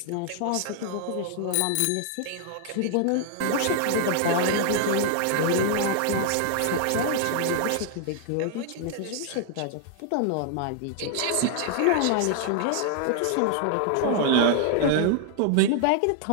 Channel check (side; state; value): both; different; correlation 0.00